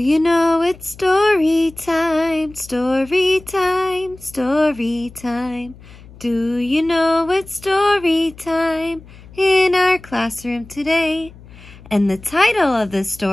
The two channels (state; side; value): noise; left; hum, 21 dB below the sound